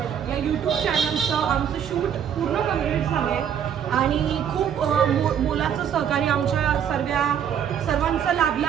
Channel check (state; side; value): quieter; left; 8.7 dB